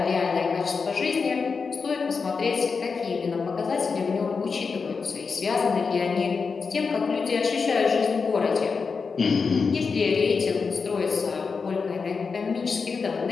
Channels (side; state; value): right; quieter; 5.1 dB